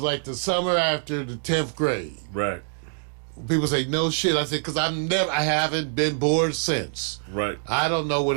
like the summer after the 10th grade. Right. People say, no shit. I said, because I haven't been bored since. Right. I don't know what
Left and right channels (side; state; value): left; silent; digital silence